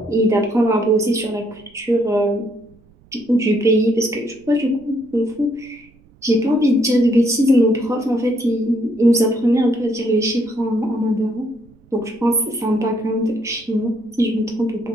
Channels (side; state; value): right; noise; rumble, 29 dB below the sound